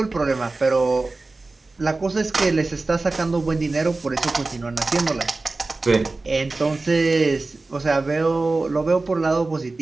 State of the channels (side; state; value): left; quieter; 3.4 dB